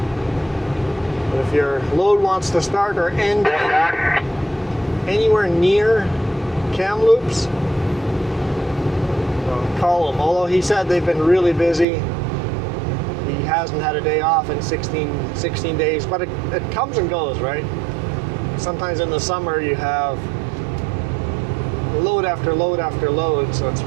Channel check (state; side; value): drops out; left; at 11.9 s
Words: But if your load wants to start or end anywhere near Kamloops, call them. Although he said they've been really busy. He hasn't had a day off in 16 days, but it comes and goes, right? Sometimes in the summer you have load after load after load, so it's